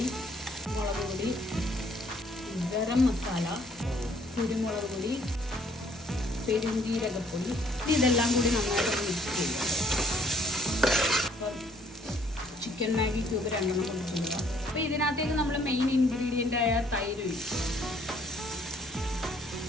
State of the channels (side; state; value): both; normal; correlation 0.63